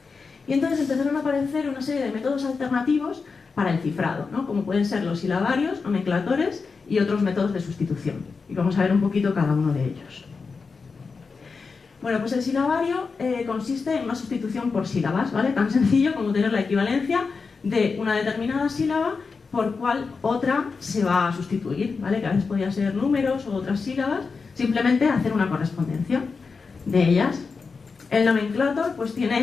Y entonces empezaron a aparecer una serie de métodos alternativos para el cifrado, ¿no? Como pueden ser los silabarios, nomenclatores y otros métodos de sustitución. Y vamos a ver un poquito cada uno de ellos. Bueno, pues el silabario consiste en una sustitución por sílabas, ¿vale? Tan sencillo como tener la equivalencia de una determinada sílaba por cual otra se va a sustituir, ¿vale? Que a veces podía ser números o otras sílabas, simplemente hacer una correspondencia de ellas. El nomenclator pues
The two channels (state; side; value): quieter; right; 4.8 dB